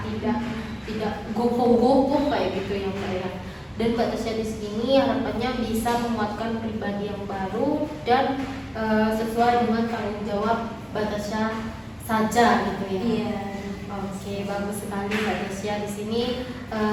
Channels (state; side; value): identical; both; correlation 1.00